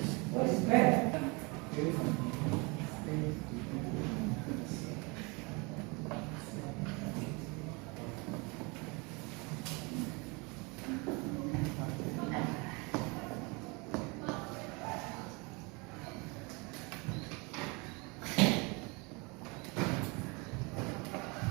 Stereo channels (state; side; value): quieter; left; 28.6 dB